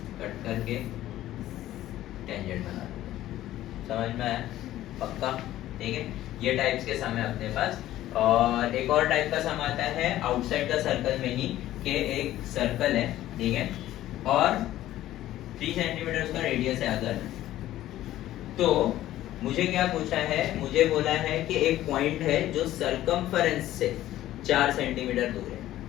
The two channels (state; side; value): quieter; right; 14.1 dB